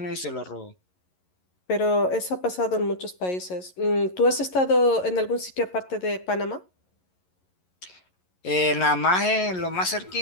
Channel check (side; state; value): right; late; 11 ms